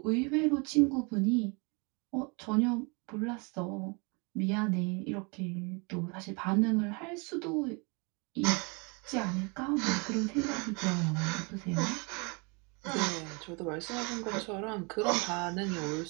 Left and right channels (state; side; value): quieter; left; 31.5 dB